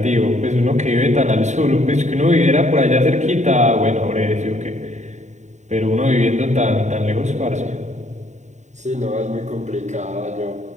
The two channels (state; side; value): late; left; 0.34 ms